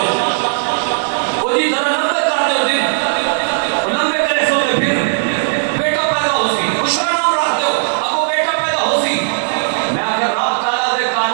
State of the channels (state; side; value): silent; left; digital silence